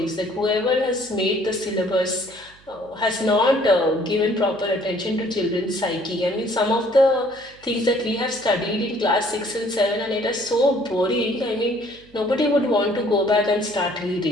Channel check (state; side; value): noise; right; hum, 28 dB below the sound